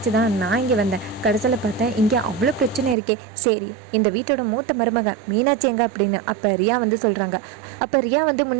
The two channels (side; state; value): left; drops out; at 3.0 s